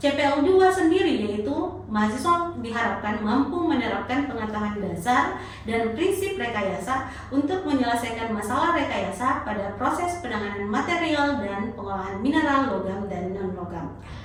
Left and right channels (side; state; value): both; identical; correlation 1.00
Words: CPL 2 sendiri yaitu mahasiswa diharapkan mampu menerapkan pengetahuan dasar dan prinsip rekayasa untuk menyelesaikan masalah rekayasa pada proses penanganan material dan pengolahan mineral, logam, dan non-logam.